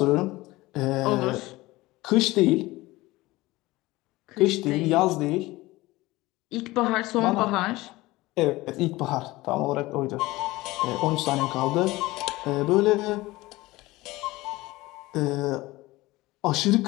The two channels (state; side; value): quieter; right; 19.6 dB